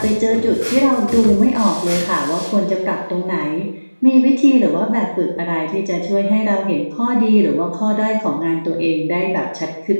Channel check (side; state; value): both; inverted; correlation -1.00